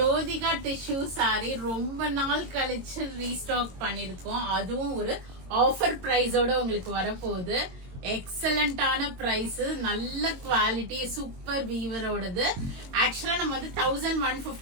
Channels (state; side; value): late; left; 22 ms